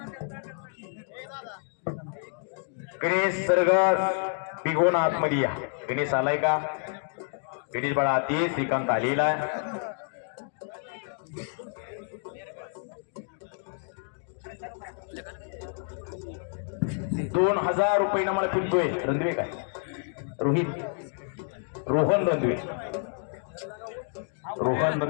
गणेश सरगर बिगोन आतमध्ये या. गणेश आलाय का? गणेश बाळा आती. श्रीकांत आलेला आहे. ₹2000 मला फिरतोय. रणदिवे काय रोहन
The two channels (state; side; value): silent; right; 59 dB below the other